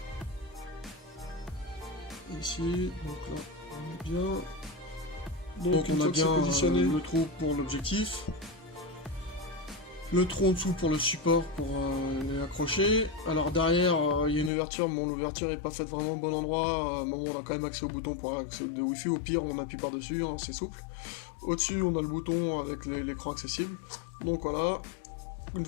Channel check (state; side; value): drops out; right; at 14.5 s